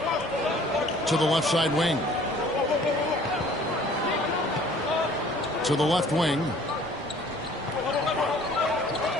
To the left side wing. To the left wing.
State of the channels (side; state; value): both; normal; correlation 0.53